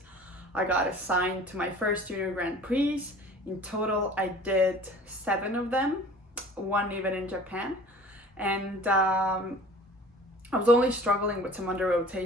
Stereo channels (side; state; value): both; normal; correlation 0.46